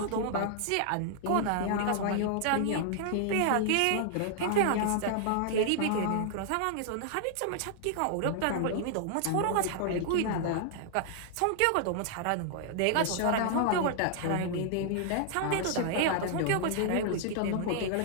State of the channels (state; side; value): different; both; correlation 0.00